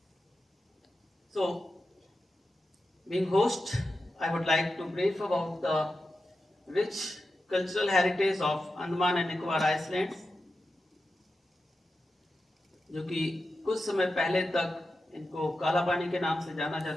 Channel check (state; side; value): normal; both; correlation 0.91